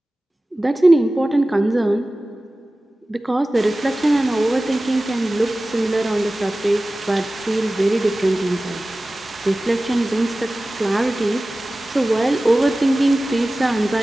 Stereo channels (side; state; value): both; normal; correlation 0.97